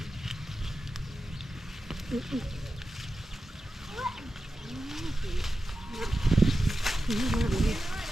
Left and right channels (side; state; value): both; normal; correlation 0.92